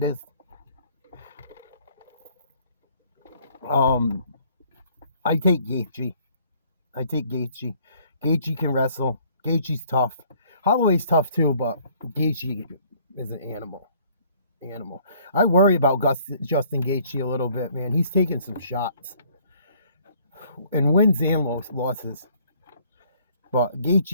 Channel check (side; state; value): both; inverted; correlation -0.60